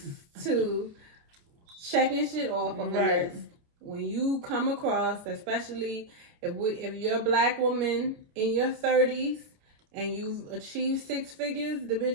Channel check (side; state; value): left; late; 29 ms